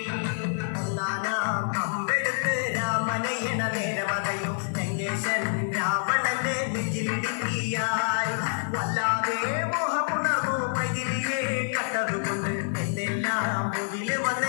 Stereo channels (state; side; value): silent; right; digital silence